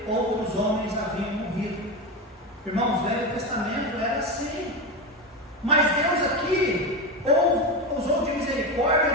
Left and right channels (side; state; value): both; normal; correlation 0.18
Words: outros homens haviam morrido. Irmãos, o Velho Testamento era assim. Mas Deus aqui usou de